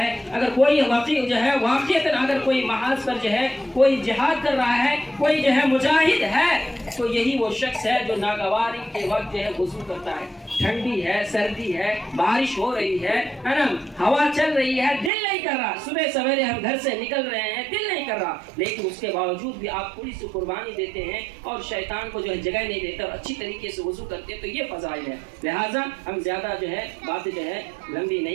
अगर कोई वाकई जो है वाक़ईतन अगर कोई महाज पर जो है कोई जिहाद कर रहा है, कोई जो है मुजाहिद है, तो यही वो शख्स है जो नागवारी के वक्त जो है वज़ू करता है। ठंडी है, सर्दी है, बारिश हो रही है ना, हवा चल रही है, दिल नहीं कर रहा, सुबह सवेरे हम घर से निकल रहे हैं, दिल नहीं कर रहा, लेकिन उसके बावजूद भी आप थोड़ी सी कुर्बानी देते हैं और शैतान को जो है जगह नहीं देते और अच्छी तरीके से वज़ू करते हैं, तो ये फ़ज़ाइल है। लिहाजा हम ज़्यादा जो है बातें जो है लंबी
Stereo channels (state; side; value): drops out; left; at 15.1 s